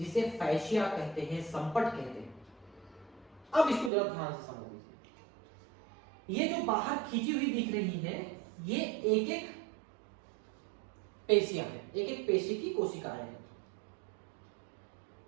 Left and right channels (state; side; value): drops out; left; at 3.9 s